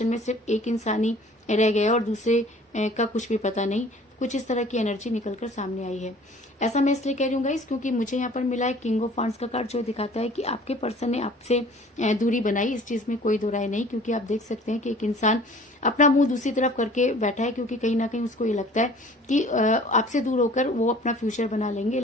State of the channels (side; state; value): both; normal; correlation 0.50